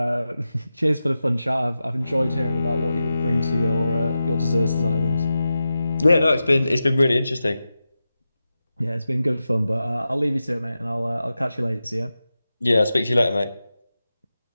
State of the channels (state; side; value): inverted; both; correlation -0.92